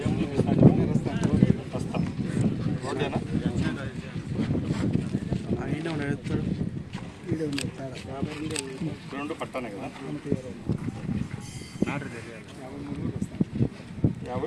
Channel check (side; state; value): both; identical; correlation 1.00